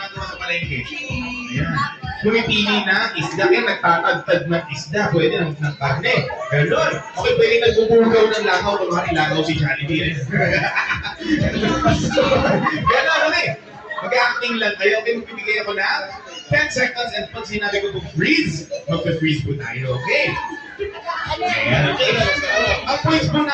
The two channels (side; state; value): both; identical; correlation 1.00